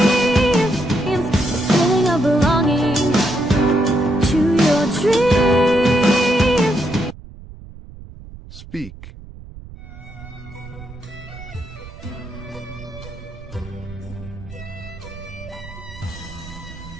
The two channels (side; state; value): right; noise; rumble, 16 dB below the sound